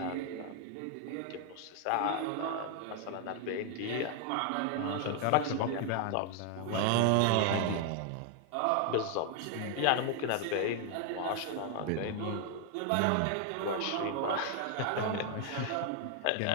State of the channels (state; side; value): different; both; correlation 0.00